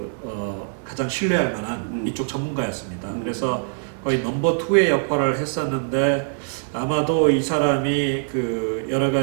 가장 신뢰할 만한 이쪽 전문가였습니다. 그래서 거의 넘버 2의 역할을 했었는데 아마도 이 사람이 그 여러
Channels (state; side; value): silent; left; 63 dB below the other